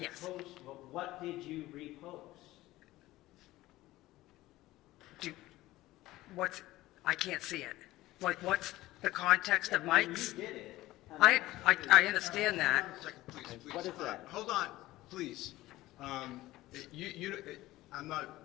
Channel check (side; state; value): right; quieter; 17.2 dB